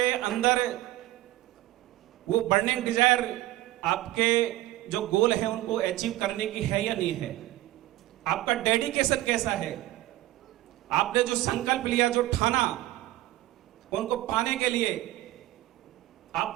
अंदर वो बर्निंग डिजायर, आपके जो गोल है उनको अचीव करने की है या नहीं है, आपका डेडिकेशन कैसा है, आपने जो संकल्प लिया, जो ठाना, उनको पाने के लिए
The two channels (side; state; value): left; quieter; 16.4 dB